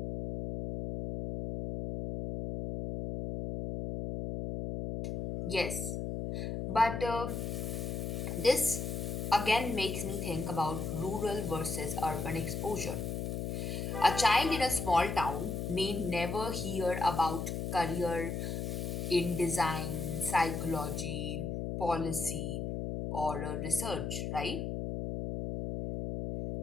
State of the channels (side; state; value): left; noise; hum, 3 dB below the sound